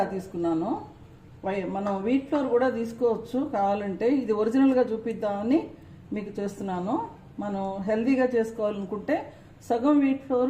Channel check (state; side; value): identical; both; correlation 1.00